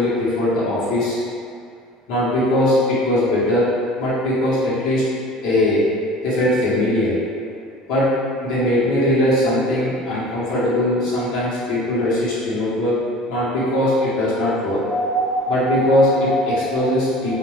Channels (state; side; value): normal; both; correlation 0.43